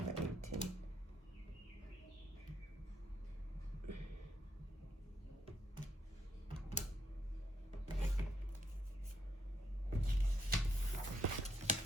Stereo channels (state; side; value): normal; both; correlation 0.75